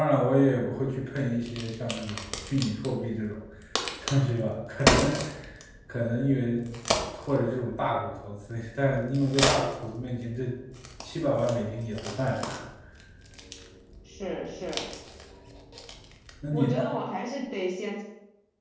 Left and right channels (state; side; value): identical; both; correlation 1.00